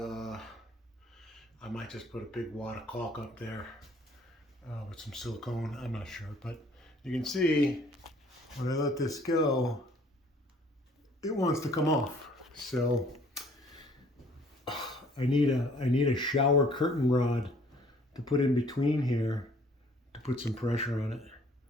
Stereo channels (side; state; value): both; normal; correlation 0.57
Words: a big wad of caulk up there with some silicone. I'm not sure, but you can see when I let this go, it wants to come off. So I need a shower curtain rod to put in between here to put some pressure on it.